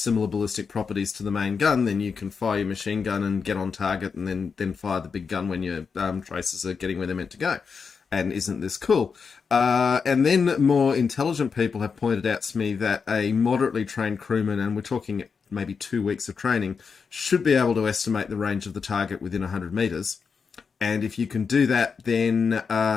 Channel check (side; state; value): right; quieter; 5.6 dB